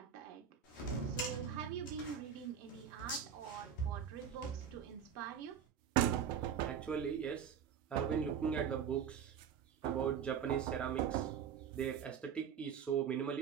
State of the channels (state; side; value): quieter; left; 8.0 dB